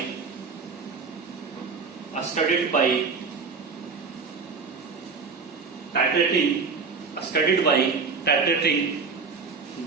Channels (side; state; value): left; quieter; 4.9 dB